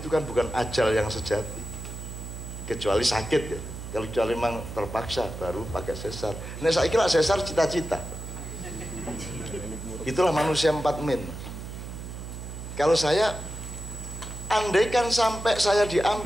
itu kan bukan ajal yang sejati. Kecuali sakit ya. Kalau kecuali memang terpaksa baru pakai sesar. Nah saya kira sesar cita-cita. Itulah manusia 4 min. Kalau saya, andaikan sampai saya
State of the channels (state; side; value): noise; right; hum, 9 dB below the sound